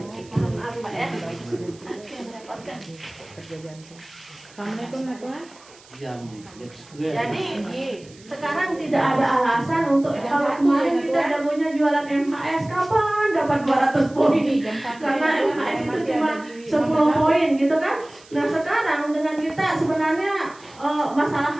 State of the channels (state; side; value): noise; right; hiss, 24 dB below the sound